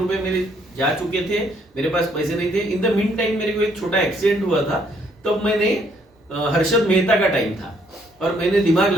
मेरे जा चुके थे, मेरे पास पैसे नहीं थे। इन द मीन टाइम मेरे को एक छोटा एक्सीडेंट हुआ था, तब मैंने हर्षद मेहता का टाइम था और मैंने दिमाग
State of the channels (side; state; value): both; normal; correlation 0.67